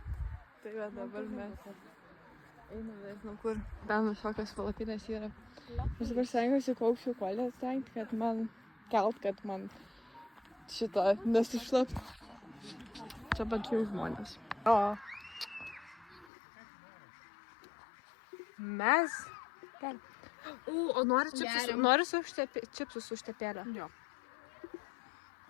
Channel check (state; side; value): drops out; right; at 16.2 s